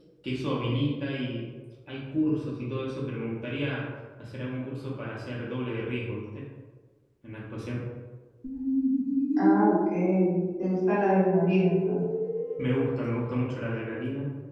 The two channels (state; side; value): identical; both; correlation 1.00